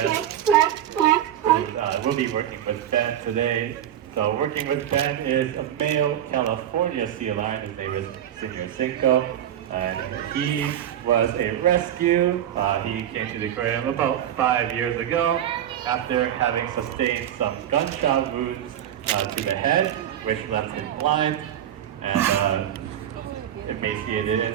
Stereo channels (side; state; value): left; quieter; 10.8 dB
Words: We'll be working with Ben today. So working with Ben is a male California sea lion. His name is Senior Cinco. He was a rescue. He came to the aquarium about 5 years ago after having sustained some gunshot wounds to the head, which left him blind and emaciated.